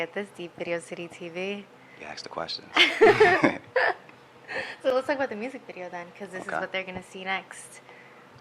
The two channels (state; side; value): identical; both; correlation 1.00